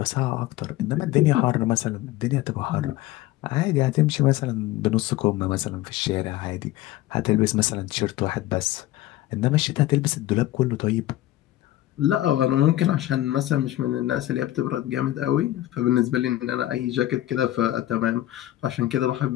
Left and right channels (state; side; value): quieter; right; 15.2 dB